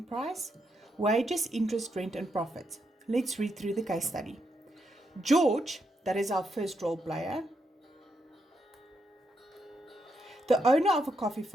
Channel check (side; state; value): both; normal; correlation 0.81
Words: price, wages, interest, rent and profit. Let's read through the case study. George, that is our first role player, the owner of a coffee